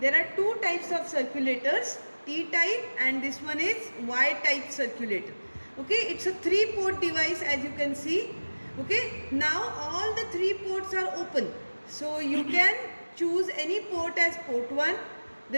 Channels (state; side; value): inverted; both; correlation -1.00